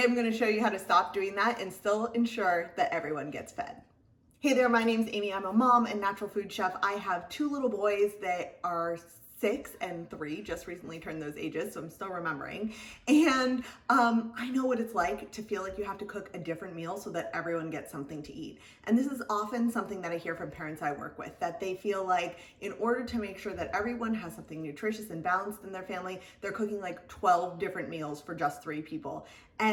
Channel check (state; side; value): identical; both; correlation 1.00